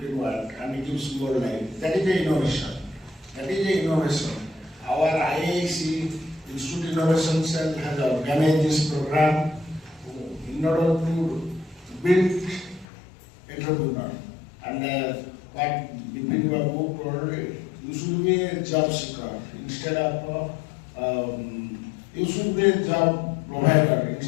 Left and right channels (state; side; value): drops out; right; at 12.9 s